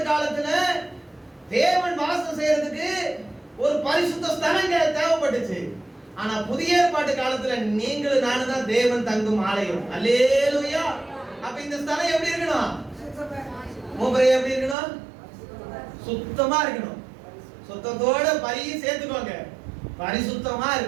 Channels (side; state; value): left; drops out; at 14.8 s